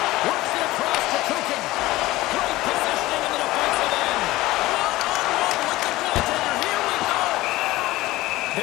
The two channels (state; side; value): quieter; right; 18.1 dB